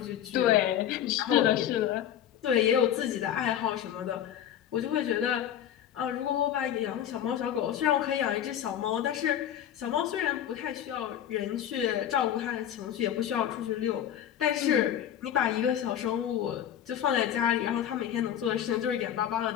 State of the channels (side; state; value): right; quieter; 10.4 dB